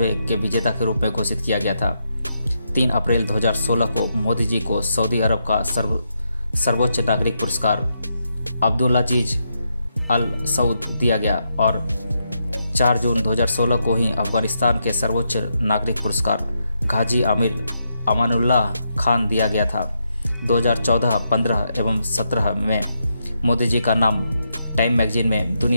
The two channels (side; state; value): both; inverted; correlation -0.81